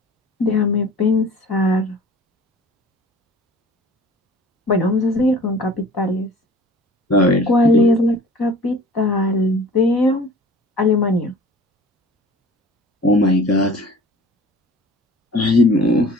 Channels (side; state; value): both; normal; correlation 0.46